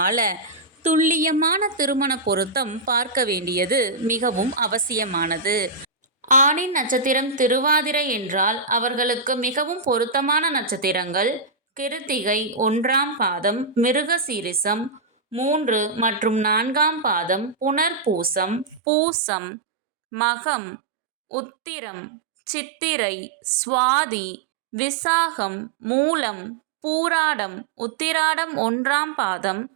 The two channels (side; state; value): left; drops out; at 18.8 s